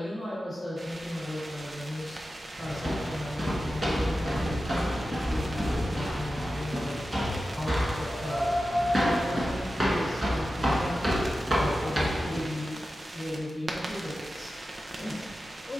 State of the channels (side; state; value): both; normal; correlation 0.93